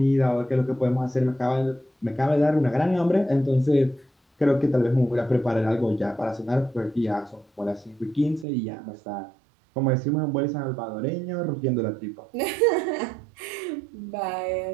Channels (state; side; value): drops out; left; at 8.5 s